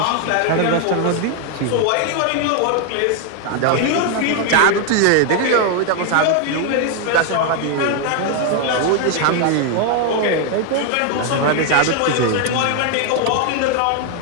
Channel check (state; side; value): different; both; correlation 0.01